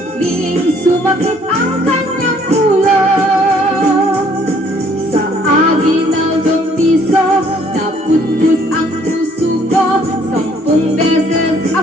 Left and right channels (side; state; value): both; normal; correlation 0.62